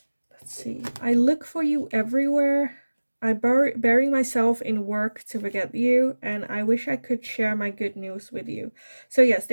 Let's see. I look for you everywhere. I bury myself in work to forget you, and I wish I could share my good news with you. So yes,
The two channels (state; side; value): inverted; both; correlation -1.00